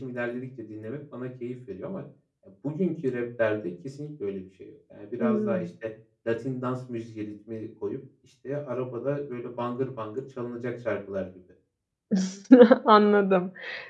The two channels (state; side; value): identical; both; correlation 1.00